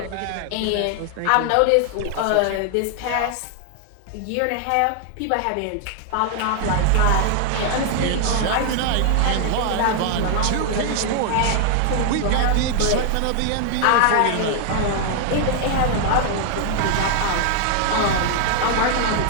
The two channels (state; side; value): different; both; correlation 0.00